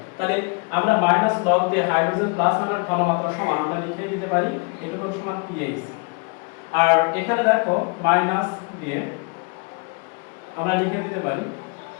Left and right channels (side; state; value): right; quieter; 34.8 dB